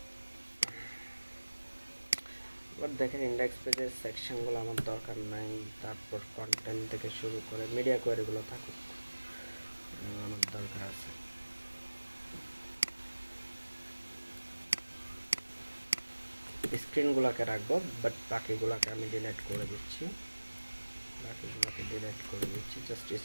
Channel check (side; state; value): both; inverted; correlation -1.00